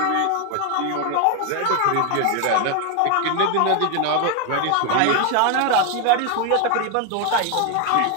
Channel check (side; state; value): both; different; correlation 0.01